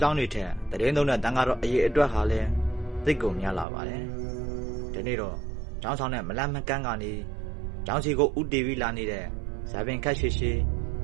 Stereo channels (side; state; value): left; drops out; at 3.7 s